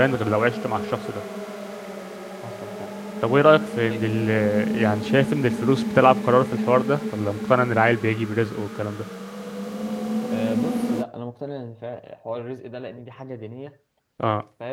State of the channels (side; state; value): both; identical; correlation 1.00